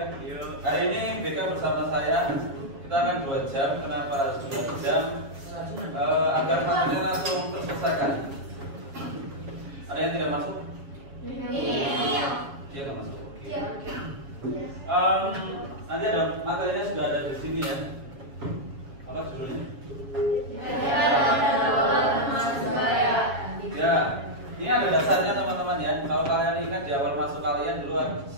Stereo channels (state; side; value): late; left; 7.3 ms